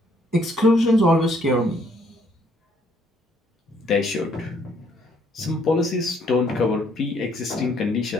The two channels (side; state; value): both; normal; correlation 0.66